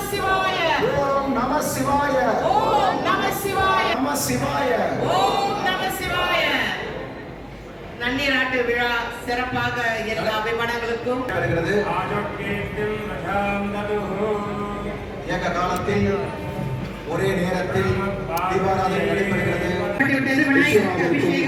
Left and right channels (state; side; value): identical; both; correlation 1.00